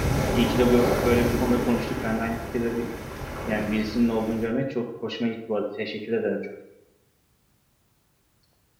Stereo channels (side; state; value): both; identical; correlation 1.00